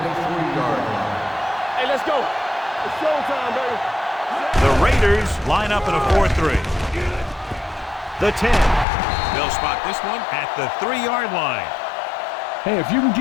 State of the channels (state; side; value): drops out; right; at 8.8 s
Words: line. Hey, let's go. It's showtime, baby. The Raiders line up in a 4-3. The 10. They'll spot this one at the 3-yard line. Hey, if you can